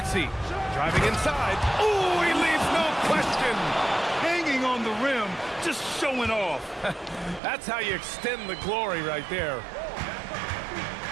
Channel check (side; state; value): left; drops out; at 7.4 s